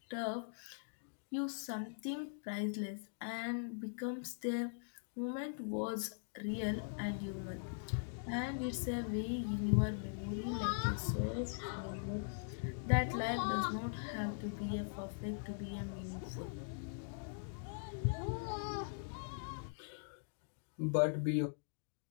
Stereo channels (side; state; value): right; silent; digital silence